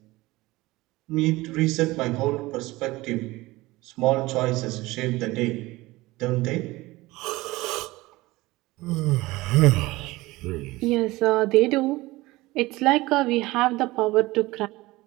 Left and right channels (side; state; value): left; quieter; 19.9 dB